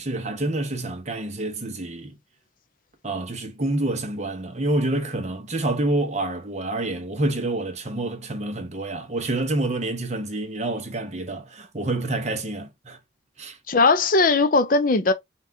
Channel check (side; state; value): both; normal; correlation 0.20